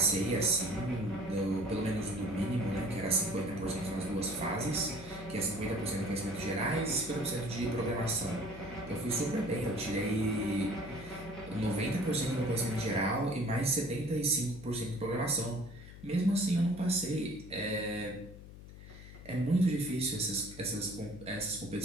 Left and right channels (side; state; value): left; noise; hum, 15 dB below the sound